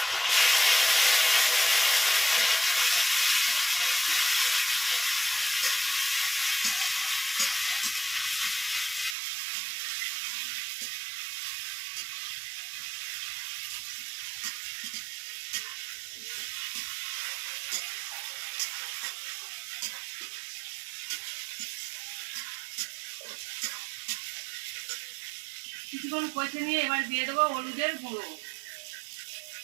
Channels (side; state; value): left; drops out; at 9.2 s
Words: কিছুক্ষণ কষে নিয়ে এবার দিয়ে দেবো হলুদের গুঁড়ো,